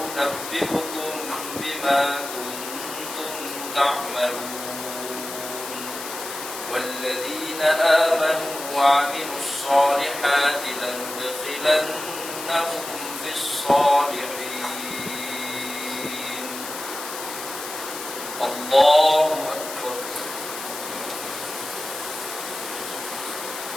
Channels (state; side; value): noise; left; hiss, 9 dB below the sound